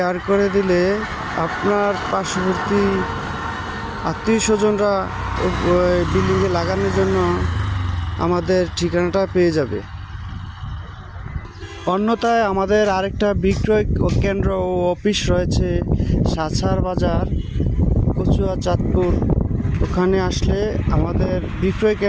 করে দিলে আপনার পার্শ্ববর্তী আত্মীয় স্বজনরা বিল্ডিংয়ে লাগানোর জন্য আমাদের ঠিকানাটা পেয়ে যাবে। অন্যথায় আমাদের আরেকটা বিক্রয় কেন্দ্র ও অফিস রয়েছে সাছার বাজার, কচুয়া, চাঁদপুর। ওখানে আসলে আমাদের বিক্রয়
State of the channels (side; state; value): both; identical; correlation 1.00